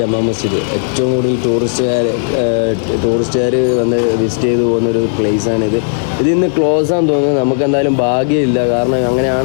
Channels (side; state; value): right; silent; digital silence